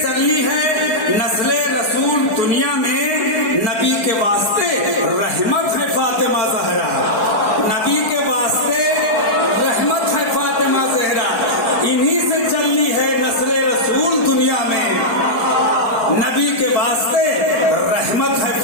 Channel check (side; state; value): right; late; 4.7 ms